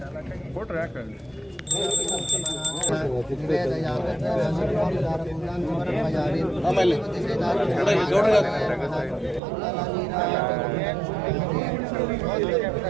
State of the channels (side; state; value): left; drops out; at 9.4 s